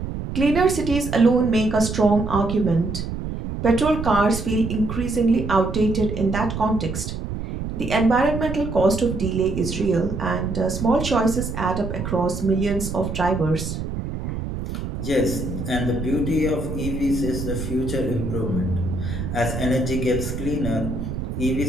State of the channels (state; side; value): noise; right; rumble, 5 dB below the sound